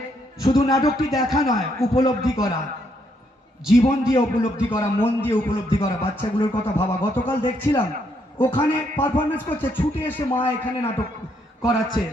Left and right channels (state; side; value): normal; both; correlation 0.74